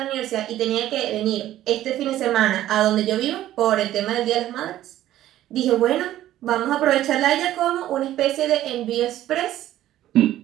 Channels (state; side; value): quieter; left; 13.4 dB